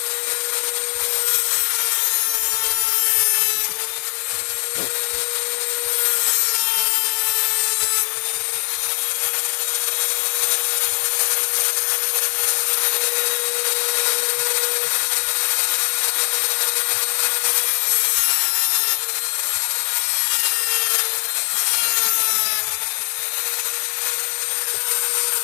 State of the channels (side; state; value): right; silent; digital silence